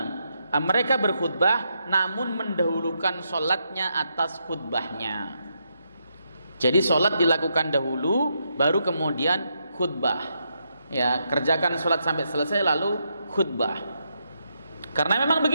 mereka berkhutbah namun mendahulukan sholatnya atas khutbahnya. Jadi sholat dilakukan dahulu, baru kemudian khutbah. Ya, kerjakan sholat sampai selesai lalu khutbah. Karena memang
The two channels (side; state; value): both; inverted; correlation -0.81